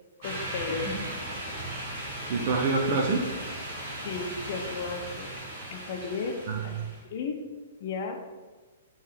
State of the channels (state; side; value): inverted; both; correlation -0.37